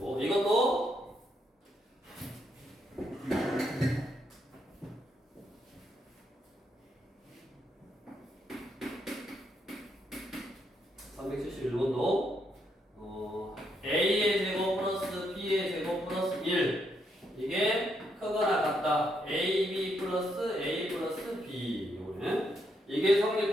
이것도 371번도 A의 제곱 플러스 B의 제곱 플러스 1 이게 크거나 같다. AB 플러스 A 플러스 B. 이거는 이게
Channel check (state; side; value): normal; both; correlation 0.77